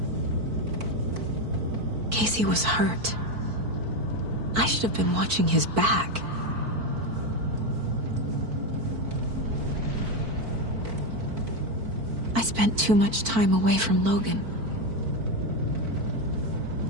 Casey was hurt. I should have been watching his back. I spent too much time away from Logan.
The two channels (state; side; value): late; left; 4.5 ms